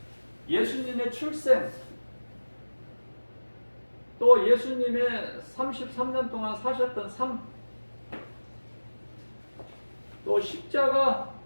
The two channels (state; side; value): inverted; both; correlation -1.00